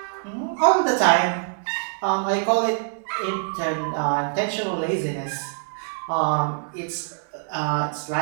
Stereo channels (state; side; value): silent; left; digital silence